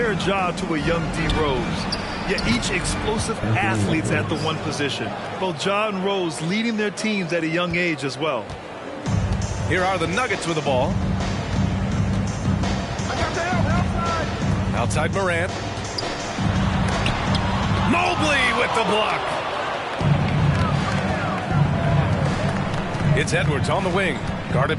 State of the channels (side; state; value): both; identical; correlation 1.00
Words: Ja to a young D. Rose. Yet each explosive athletes at the one position. Both Ja and Rose leading their teams at a young age as well. Here are the Nuggets with the ball. Outside Morant. Mobley with the block. It's Edwards on the wing, guarded